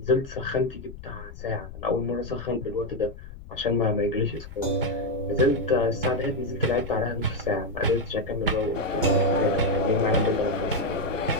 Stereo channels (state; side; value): noise; left; rumble, 15 dB below the sound